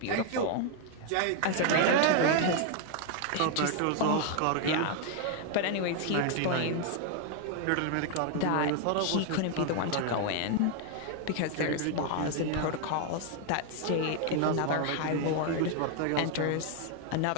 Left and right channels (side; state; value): both; different; correlation 0.00